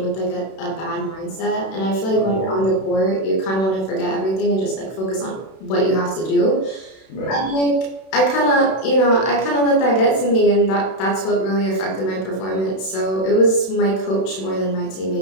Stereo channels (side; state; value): right; late; 31 ms